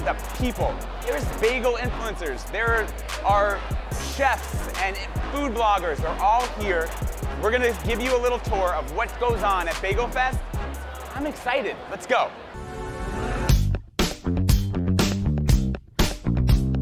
people. There's bagel influencers. There are chefs and food bloggers. They're all here. We're gonna give you a little tour of what goes on at Bagel Fest. I'm excited. Let's go.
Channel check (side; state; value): both; identical; correlation 1.00